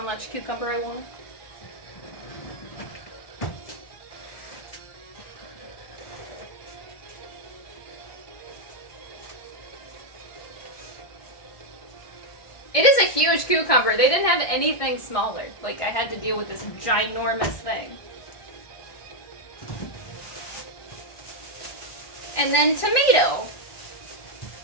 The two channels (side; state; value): right; late; 1.6 ms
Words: cucumber I want. It is a huge cucumber. They didn't have anything smaller. Like, I had to deal with this ginormous thing. And then tomato.